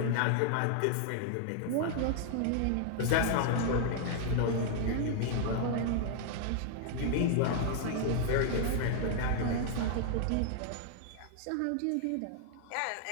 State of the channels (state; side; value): different; both; correlation 0.00